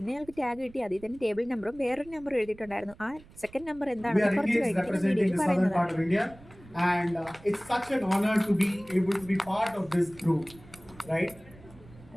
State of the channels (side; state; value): right; noise; rumble, 22 dB below the sound